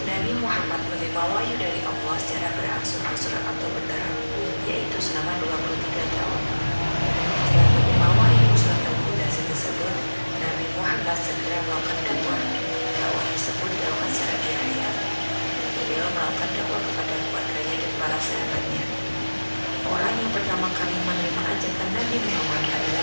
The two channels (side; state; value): both; inverted; correlation -1.00